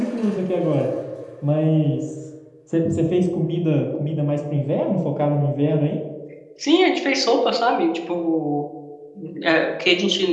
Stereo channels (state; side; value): identical; both; correlation 1.00